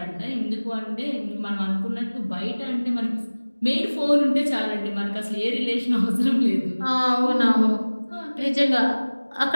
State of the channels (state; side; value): inverted; both; correlation -1.00